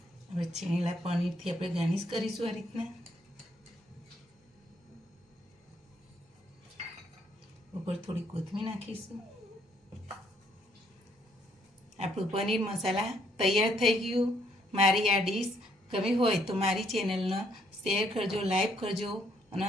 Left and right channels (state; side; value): normal; both; correlation 0.69